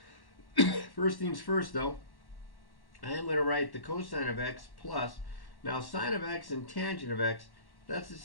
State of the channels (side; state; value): right; late; 1.1 ms